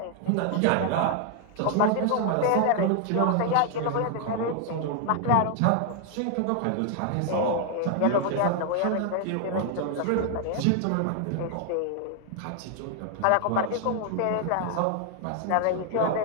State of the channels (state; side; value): different; both; correlation 0.00